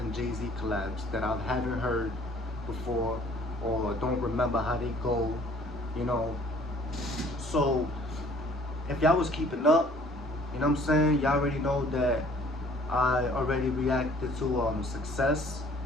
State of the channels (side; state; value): both; normal; correlation 0.55